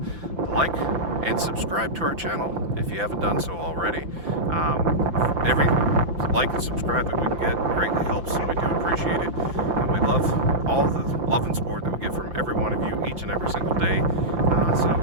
like and subscribe to our channel if you haven't done so already. Every like and subscribe that we can get greatly helps, and we do appreciate it. And we love all the love and support that we get from every one of you each and every single day.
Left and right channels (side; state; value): left; late; 5.9 ms